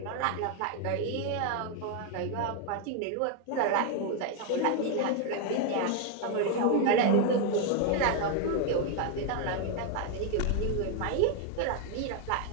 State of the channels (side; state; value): both; different; correlation 0.01